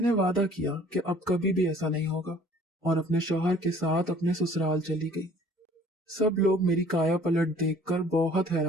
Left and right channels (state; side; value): normal; both; correlation 0.53